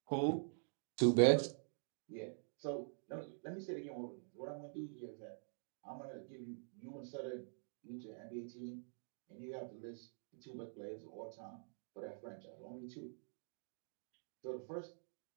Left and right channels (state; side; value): silent; left; digital silence